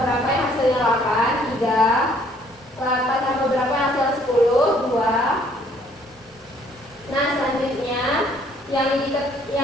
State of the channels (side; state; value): both; normal; correlation 0.62